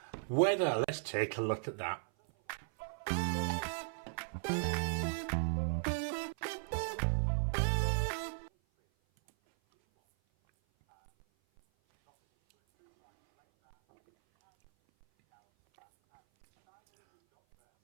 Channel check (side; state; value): left; silent; 54 dB below the other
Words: Weather, let's take a look at that.